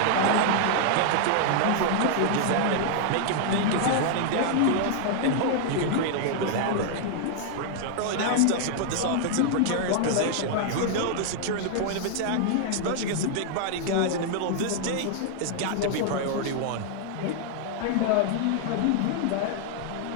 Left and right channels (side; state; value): both; different; correlation 0.00